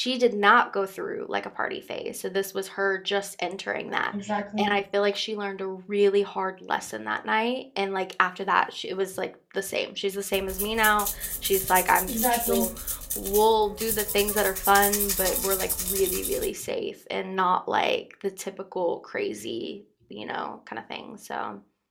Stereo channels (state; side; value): identical; both; correlation 1.00